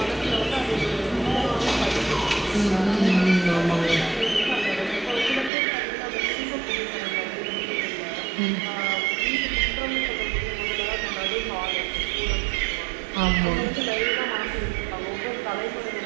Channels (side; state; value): left; drops out; at 5.5 s